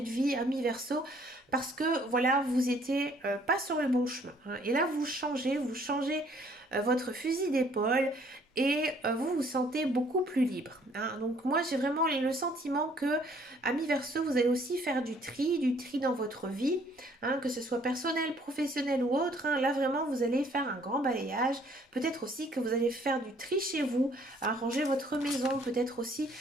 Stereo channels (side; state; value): both; normal; correlation 0.61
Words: de vie, ami Verseau, parce que voilà, vous étiez pas sur le bon chemin, hein. Et là, vous changez votre fusil d'épaule et vous vous sentez beaucoup plus libre, hein. Donc moi, j'ai vraiment le sentiment que, ami Verseau, vous allez aussi faire du tri dans votre vie, hein, que ce soit personnel, professionnel ou autre, hein. Là, vraiment, vous allez faire un grand balayage. Peut-être aussi que vous allez faire du tri chez vous, ranger votre maison, peut-être aussi